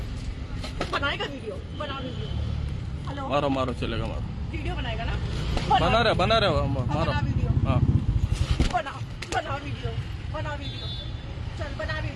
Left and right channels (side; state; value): both; identical; correlation 1.00